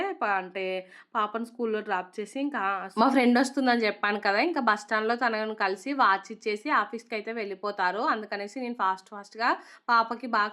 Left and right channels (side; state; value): both; identical; correlation 1.00